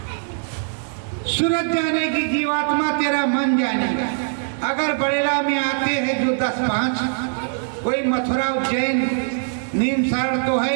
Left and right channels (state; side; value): silent; left; 64 dB below the other